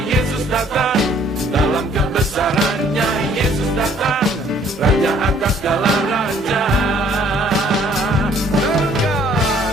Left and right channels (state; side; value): normal; both; correlation 0.60